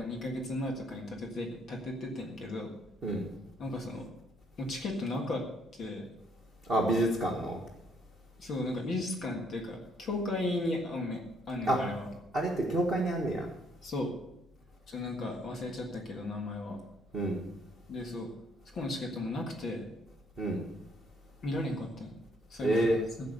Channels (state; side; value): normal; both; correlation 0.68